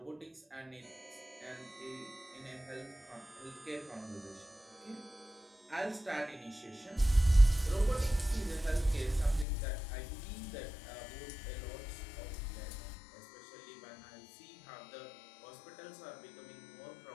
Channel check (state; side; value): drops out; right; at 9.5 s